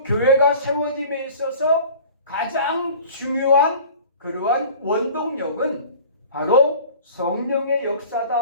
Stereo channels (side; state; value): both; inverted; correlation -0.45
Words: 교회가 세워짐에 있어서 가장 중요한 그러한 원동력은 바로 성령의